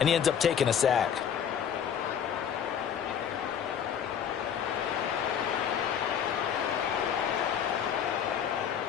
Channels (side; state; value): right; quieter; 8.4 dB